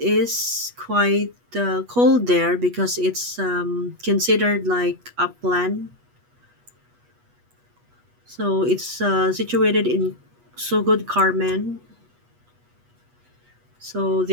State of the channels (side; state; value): left; late; 8.3 ms